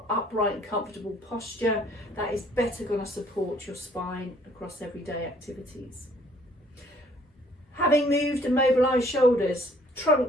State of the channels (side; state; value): both; normal; correlation 0.60